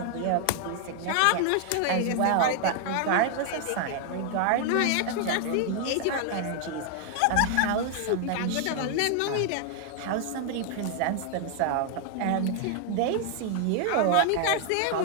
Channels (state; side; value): different; both; correlation 0.00